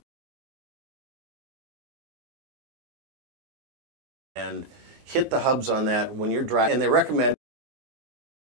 and hit the hubs on that when you're driving. And they recommend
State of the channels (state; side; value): late; left; 19 ms